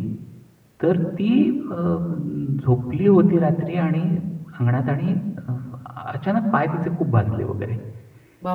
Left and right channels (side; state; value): both; identical; correlation 1.00